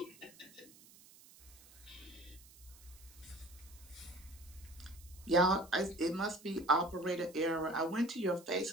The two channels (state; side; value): noise; right; hiss, 22 dB below the sound